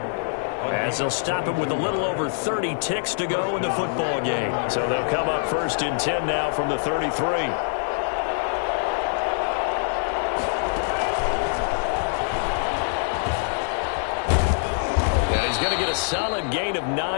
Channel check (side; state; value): right; silent; digital silence